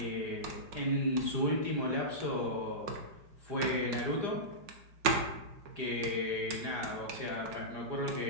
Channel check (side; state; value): left; late; 5.6 ms